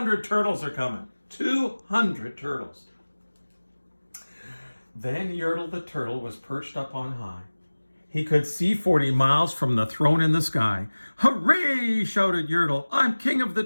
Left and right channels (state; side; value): inverted; both; correlation -1.00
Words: turtles are coming. 200 turtles. Then Yertle the turtle was perched up on high. He could see 40 miles from the throne in the sky. Hooray, shouted Yertle. I'm king of the